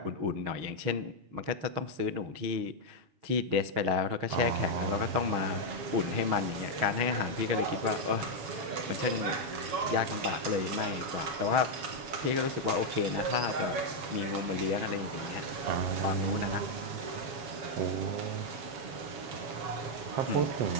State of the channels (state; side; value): late; left; 7.2 ms